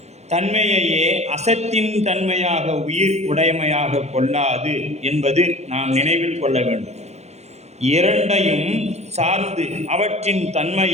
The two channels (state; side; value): late; left; 0.32 ms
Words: தன்மையையே அசத்தின் தன்மையாக உயிர் உடைமையாக கொள்ளாது என்பது நாம் நினைவில் கொள்ள வேண்டும். இரண்டையும் சார்ந்து அவற்றின்